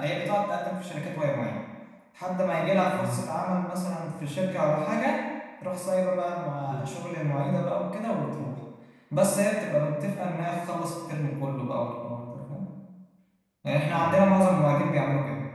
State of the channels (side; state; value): both; identical; correlation 1.00